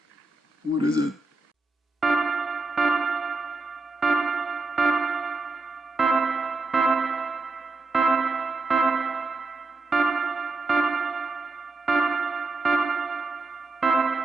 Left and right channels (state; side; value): quieter; left; 3.4 dB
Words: What is it?